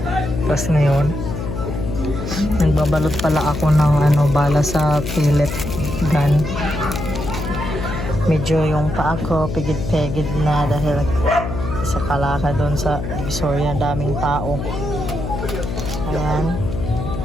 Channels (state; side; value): noise; left; hum, 5 dB below the sound